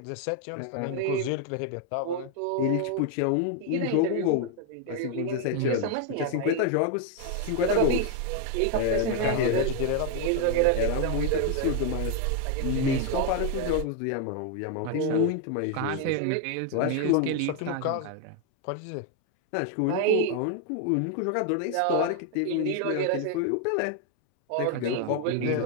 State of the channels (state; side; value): different; both; correlation 0.01